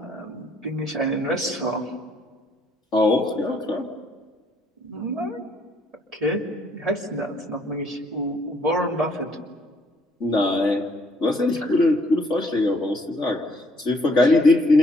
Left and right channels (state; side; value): normal; both; correlation 0.66